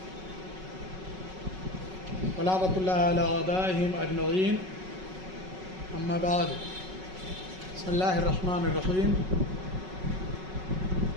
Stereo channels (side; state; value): left; late; 5.4 ms